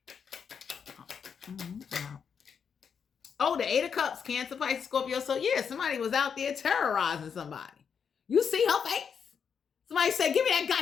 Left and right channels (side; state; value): right; quieter; 6.8 dB